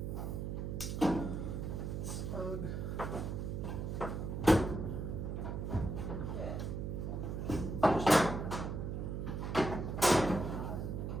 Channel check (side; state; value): right; noise; hum, 3 dB below the sound